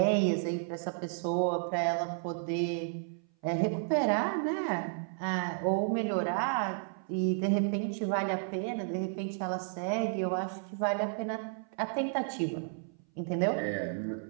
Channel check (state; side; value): silent; left; 56 dB below the other